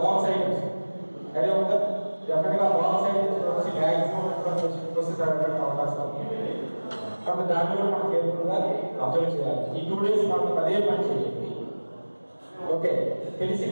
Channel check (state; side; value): inverted; both; correlation -1.00